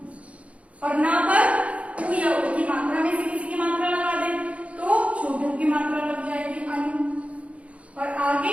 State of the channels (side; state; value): left; late; 0.064 ms